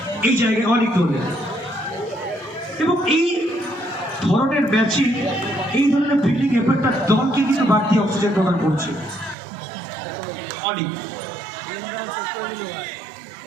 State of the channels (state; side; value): drops out; left; at 9.3 s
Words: এই জায়গায় অনেক দলে। এবং এই ধরনের ম্যাচিং, এই ধরনের ফিল্ডিং এফেক্টটা দলকে কিন্তু বাড়তি অক্সিজেন প্রদান করছে। অনেক